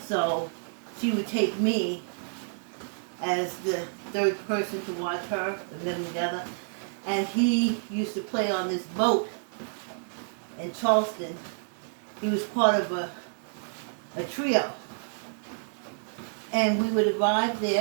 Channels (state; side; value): silent; left; digital silence